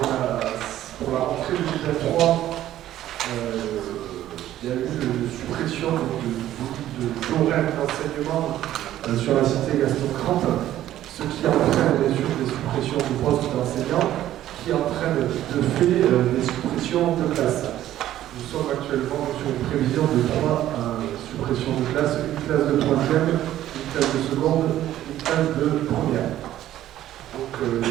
la rentrée 2023, il y a eu une suppression d'horaires d'enseignement sur la cité Gaston Crans, ce qui entraîne bien sûr des suppressions de postes d'enseignants, qui entraîne de fait des suppressions de classes. Nous sommes actuellement sur une prévision de 3 suppressions de classes, une classe de 3e, une classe de seconde, une classe de première. Donc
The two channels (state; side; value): quieter; left; 13.0 dB